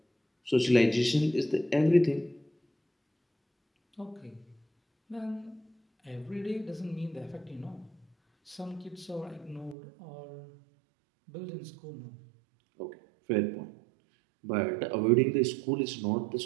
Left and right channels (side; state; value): left; drops out; at 9.8 s